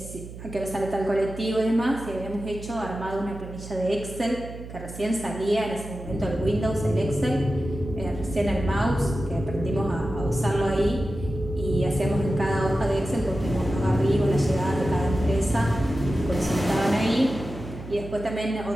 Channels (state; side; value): noise; right; hum, 12 dB below the sound